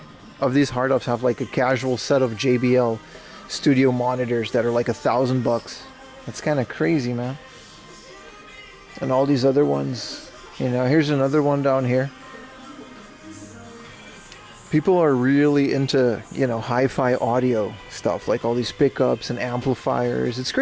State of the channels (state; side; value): identical; both; correlation 1.00